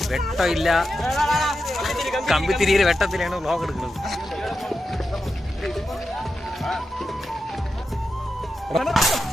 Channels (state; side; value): normal; both; correlation 0.89